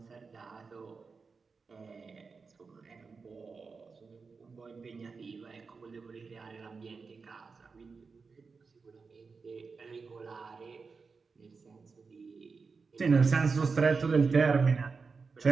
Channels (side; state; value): left; quieter; 4.8 dB